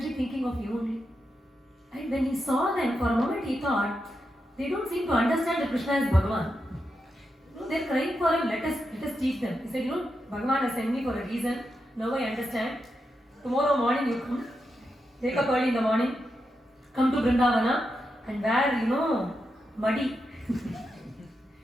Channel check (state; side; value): normal; both; correlation 0.86